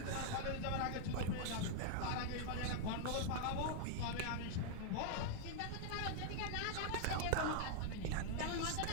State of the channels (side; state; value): both; different; correlation 0.00